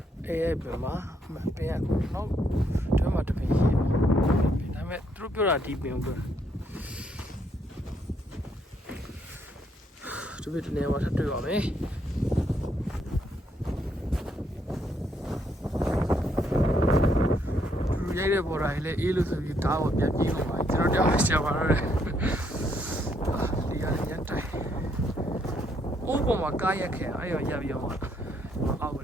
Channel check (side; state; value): both; normal; correlation 0.73